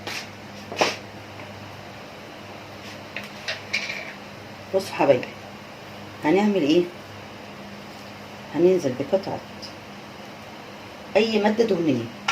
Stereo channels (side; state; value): both; identical; correlation 1.00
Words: بصوا حبايبي، هنعمل ايه؟ هننزل بقطعة اي مادة دهنية.